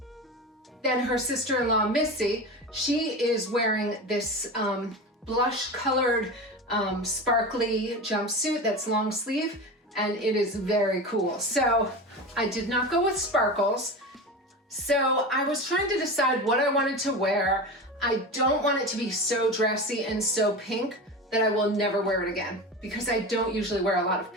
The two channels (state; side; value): normal; both; correlation 0.27